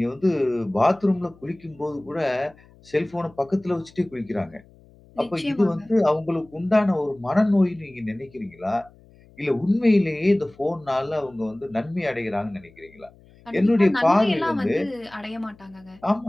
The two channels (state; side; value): noise; left; hum, 26 dB below the sound